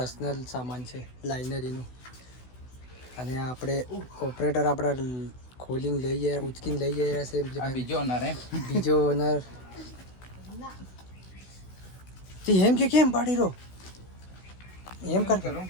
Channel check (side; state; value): right; late; 16 ms